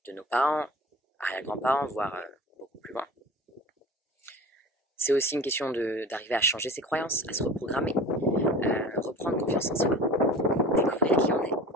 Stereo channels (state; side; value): normal; both; correlation 0.39